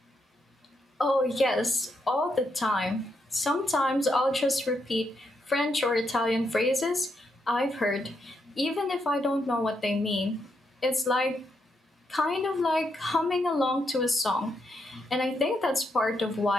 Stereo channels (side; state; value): both; normal; correlation 0.80